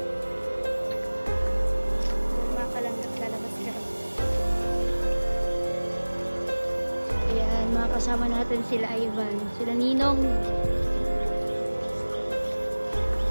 Mga kalangga, lalabas ka rin. Ayan, mga kasama natin sila Ivan, sila Ninong.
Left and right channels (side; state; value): both; inverted; correlation -1.00